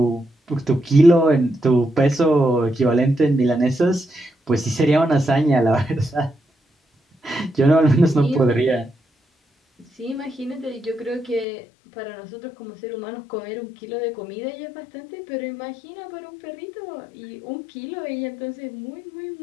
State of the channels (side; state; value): right; drops out; at 11.5 s